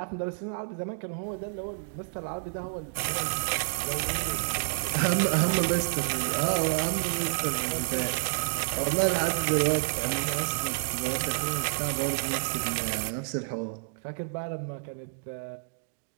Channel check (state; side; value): silent; left; digital silence